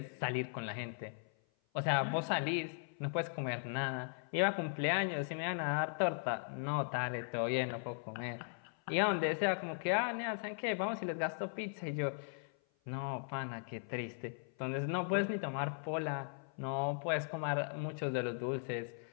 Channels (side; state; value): right; silent; 52 dB below the other